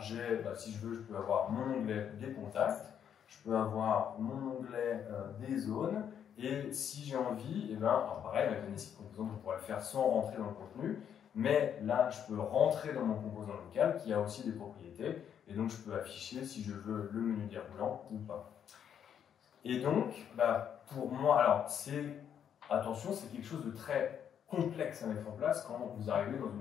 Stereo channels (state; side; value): quieter; right; 8.7 dB